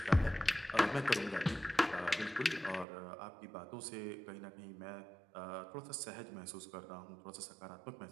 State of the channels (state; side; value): drops out; left; at 2.9 s